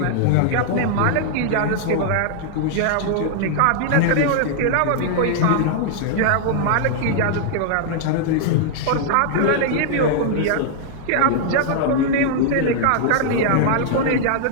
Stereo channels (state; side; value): different; both; correlation -0.01